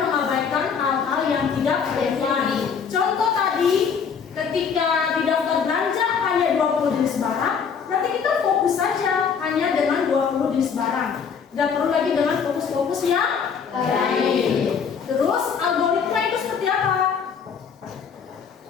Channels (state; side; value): quieter; right; 6.5 dB